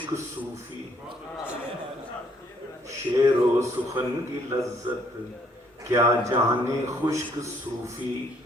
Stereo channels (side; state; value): both; normal; correlation 0.65